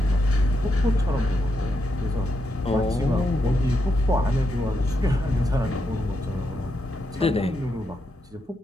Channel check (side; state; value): both; normal; correlation 0.82